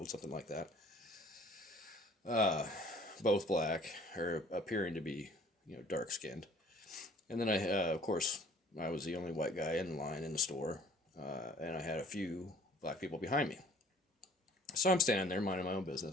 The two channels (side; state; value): both; normal; correlation 0.54